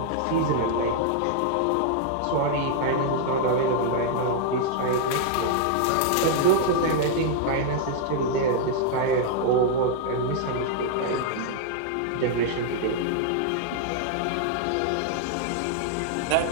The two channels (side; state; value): both; different; correlation 0.00